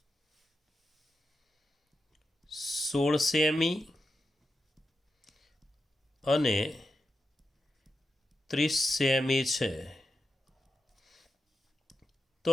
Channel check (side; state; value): both; normal; correlation 0.88